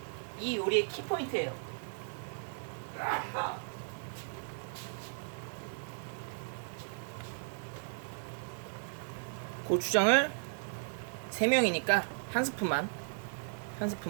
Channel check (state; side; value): silent; left; digital silence